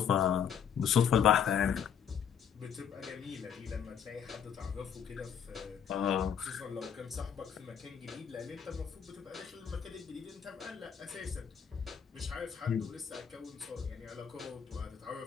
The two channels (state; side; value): quieter; right; 8.0 dB